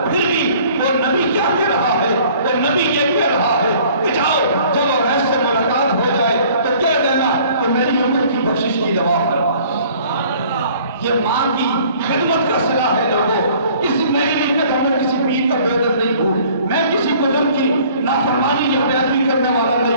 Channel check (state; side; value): inverted; both; correlation -0.54